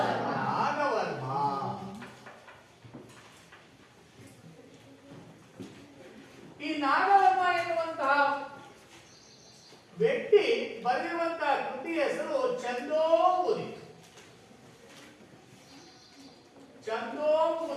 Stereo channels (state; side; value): identical; both; correlation 1.00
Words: ನಾಗವರ್ಮ. ಈ ನಾಗವರ್ಮ ಎನ್ನುವಂತಹ ವ್ಯಕ್ತಿ ಬರೆಯುವಂತಹ ಕೃತಿ ಹೆಸರು ಛಂದೋಂಬುದಿ.